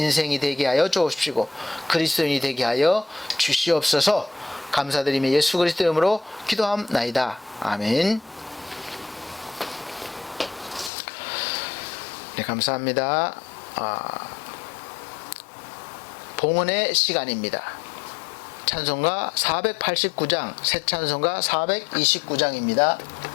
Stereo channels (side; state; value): right; drops out; at 10.9 s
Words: 되게 하여 주옵시고 그리스도인이 되게 하여 주시옵소서. 감사드리며 예수 그리스도 이름으로 기도함나이다. 아멘. 네, 감사합니다. 봉헌의 시간입니다. 찬송가 489장, 새 찬송가 429장입니다.